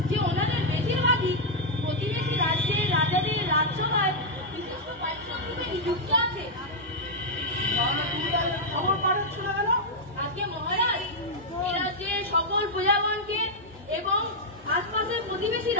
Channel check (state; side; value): normal; both; correlation -0.03